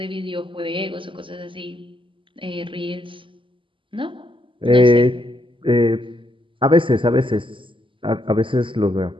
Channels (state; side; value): late; left; 0.25 ms